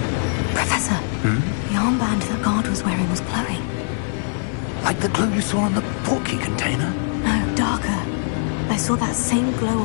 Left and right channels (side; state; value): right; silent; digital silence